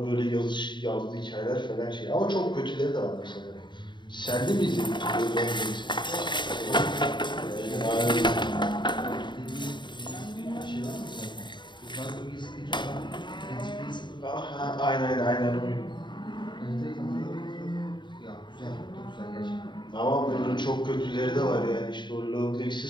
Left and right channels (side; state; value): right; late; 0.22 ms